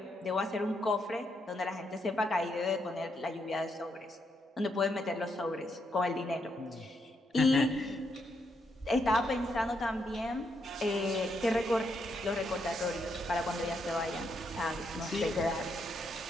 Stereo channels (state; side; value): normal; both; correlation 0.79